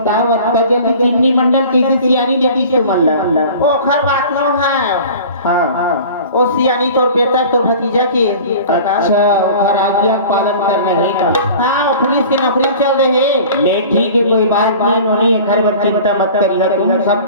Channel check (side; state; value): both; inverted; correlation -0.42